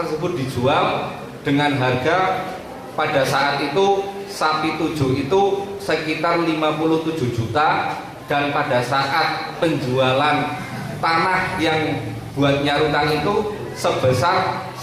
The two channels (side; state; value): both; identical; correlation 1.00